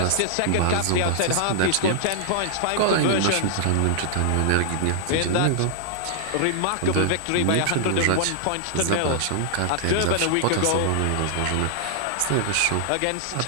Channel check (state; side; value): different; both; correlation -0.01